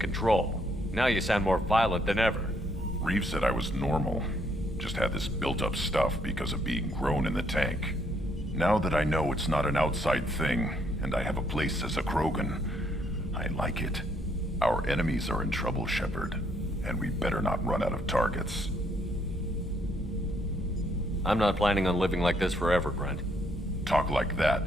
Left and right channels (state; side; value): normal; both; correlation 0.70